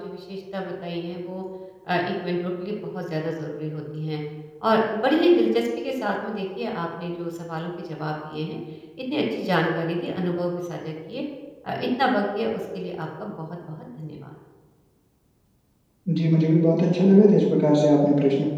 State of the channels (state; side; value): identical; both; correlation 1.00